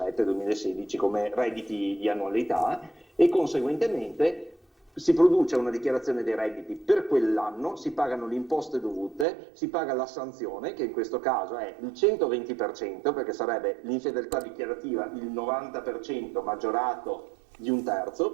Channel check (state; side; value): drops out; left; at 9.2 s